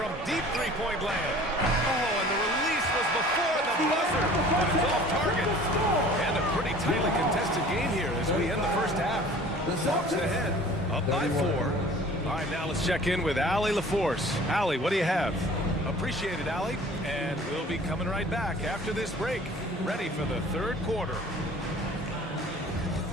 deep three-point land. Oh, and the release was before the buzzer, but it's off target. And a pretty tightly contested game here as we end the first half. Hawks ahead, up by 4. All right, now let's check in with Allie LaForce. Allie, what do you have? Appreciate it, Allie. And we'll be coming right back after this break, ready for the third quarter.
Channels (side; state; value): both; normal; correlation 0.47